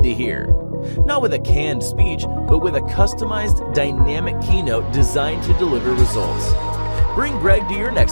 to hear. Not with a canned speech, but with a customized, dynamic keynote designed to deliver results. Bring Greg to your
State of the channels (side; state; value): both; inverted; correlation -1.00